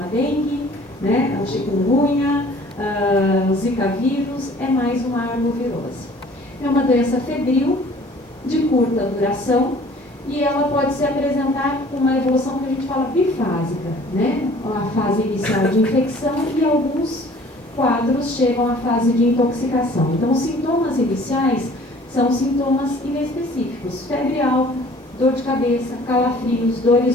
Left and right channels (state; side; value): normal; both; correlation 0.52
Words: a dengue, né? A chikungunya, o zika vírus, é mais uma arbovirose. É uma doença febril, de curta duração, e ela pode se apresentar com uma evolução que a gente fala bifásica, né? A fase inicial de infecção e alguns quadros chegam à fase de intoxicação. Então, os sintomas iniciais são sintomas inespecíficos: febre alta, dor de cabeça, calafrios,